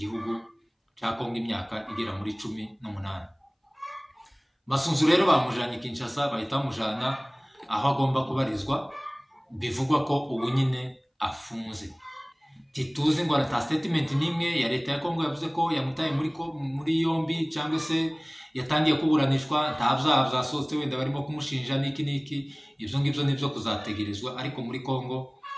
cya Kongo imyaka igera muri 18. Masunzu rero bamujanye Kinshasa, bahita bamujana aho agomba kubarizwa, bivugwa ko ubu nyine afunze. Tituzi ngo ata statement nimwe ya leta ya Kongo yavuze ko yamutaye muri yombi cyangwa se yatangiye kuburanishwa, nta byaha byasohotse wenda barimo kumushinja niki. Ibyo ngibyo nibyo kuzategerezwa, ariko muri Kongo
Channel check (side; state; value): both; identical; correlation 1.00